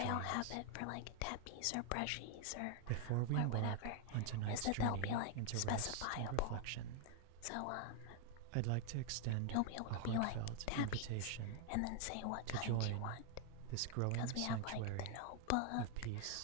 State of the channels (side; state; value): both; different; correlation 0.00